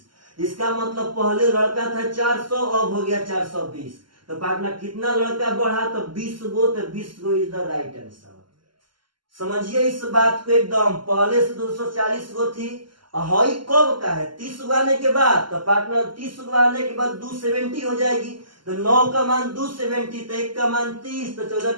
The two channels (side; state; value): left; late; 0.72 ms